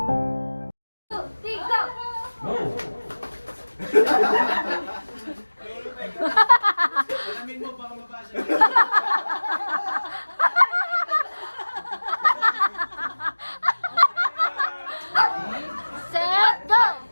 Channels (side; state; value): both; inverted; correlation -1.00